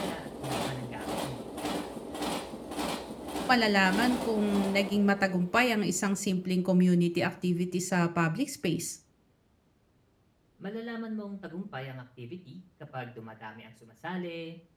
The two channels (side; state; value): both; identical; correlation 1.00